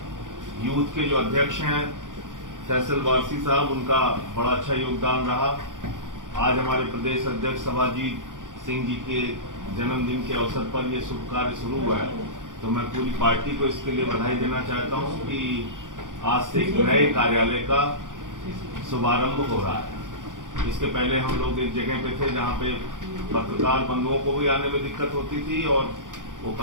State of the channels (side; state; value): left; late; 0.88 ms